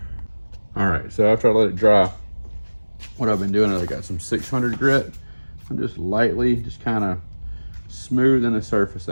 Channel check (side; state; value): both; inverted; correlation -1.00